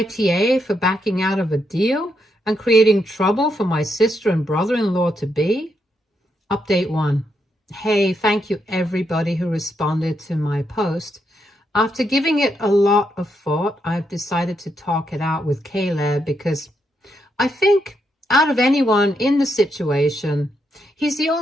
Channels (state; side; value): normal; both; correlation 0.80